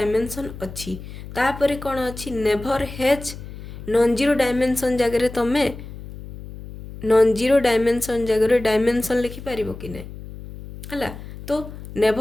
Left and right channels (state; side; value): noise; left; hum, 13 dB below the sound